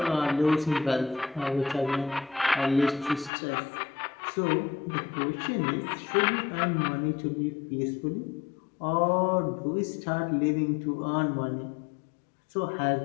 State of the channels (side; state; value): right; drops out; at 3.3 s